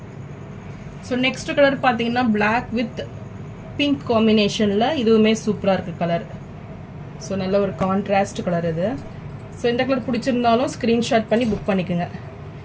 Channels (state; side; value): identical; both; correlation 1.00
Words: ஸோ நெக்ஸ்ட் கலர் பார்த்தீங்கன்னா பிளாக் வித் பிங்க் காம்பினேஷனில் இதுவுமே சூப்பராக இருக்குது கலர். ஸோ நல்ல ஒரு கான்ட்ராஸ்ட் கலர் இது. ஸோ இந்த கலர் பிடிச்சிருந்தாலும் ஸ்க்ரீன்ஷாட் பண்ணி புக் பண்ணிக்கோங்க.